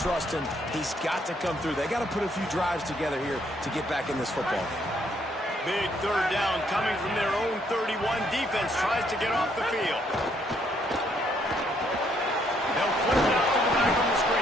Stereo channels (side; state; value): both; normal; correlation 0.70